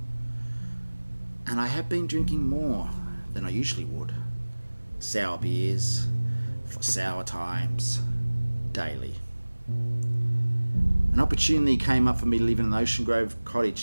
And I have been drinking more than I usually would. Sour beers, for sour times, daily. An opportunity came up for me to live in an Ocean Grove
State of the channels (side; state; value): both; inverted; correlation -1.00